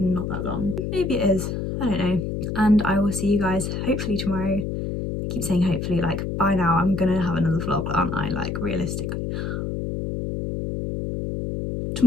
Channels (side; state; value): left; noise; hum, 3 dB below the sound